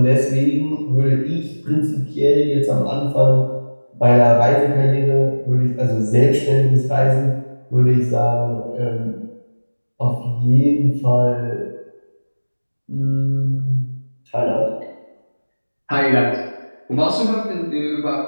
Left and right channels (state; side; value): inverted; both; correlation -1.00